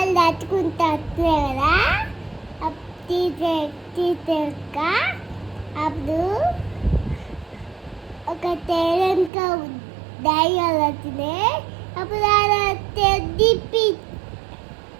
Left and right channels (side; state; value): left; drops out; at 9.3 s